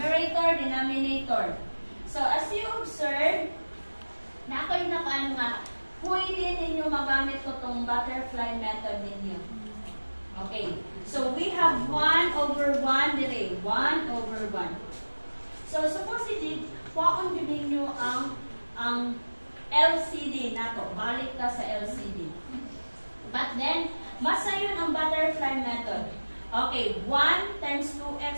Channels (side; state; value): both; inverted; correlation -1.00